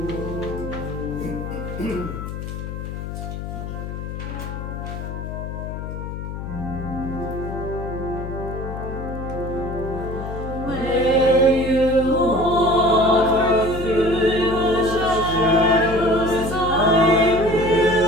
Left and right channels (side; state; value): left; noise; hum, 7 dB below the sound